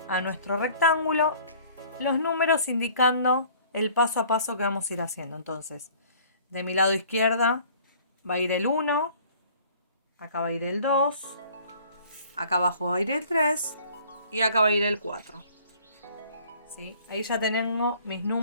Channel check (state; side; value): inverted; both; correlation -0.52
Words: a nuestro rectángulo los números indicando el paso a paso que vamos a ir haciendo. Entonces, de mi lado izquierda va a ir el 1, acá va a ir el 2, acá abajo va a ir el 3 y acá va a ir el 4. ¿Sí? Ahí ya tengo mis